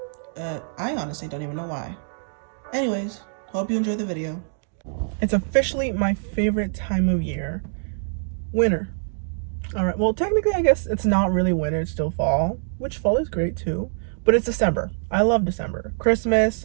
I honestly don't even know why. Anyways, hope you enjoyed the video. It's officially my favorite time of year. Winter. Alright, well, technically, I guess it's not really winter, it's still fall, which fall is great too. But it's December. I love December.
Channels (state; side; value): silent; left; digital silence